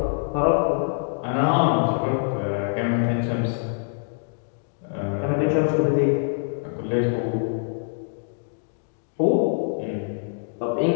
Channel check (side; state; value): right; silent; digital silence